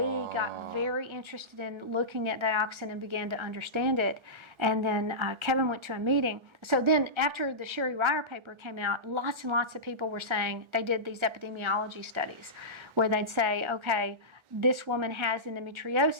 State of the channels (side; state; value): left; late; 1.4 ms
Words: got very interested in looking at dioxin and began to understand it. And then Kevin went to a meeting. So then after the Sherry Ryer paper came out, lots and lots of people were saying, they did these epidemiology studies where they'd say, okay, this woman has